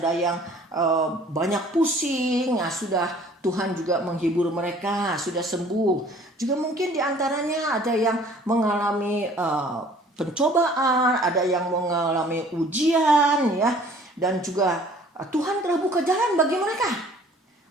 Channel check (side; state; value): both; normal; correlation 0.53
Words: yang banyak pusing, sudah Tuhan juga menghibur mereka, sudah sembuh. Juga mungkin diantaranya ada yang mengalami pencobaan, ada yang mengalami ujian ya, dan juga Tuhan telah buka jalan bagi mereka.